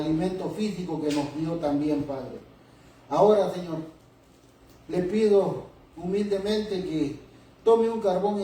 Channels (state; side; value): identical; both; correlation 1.00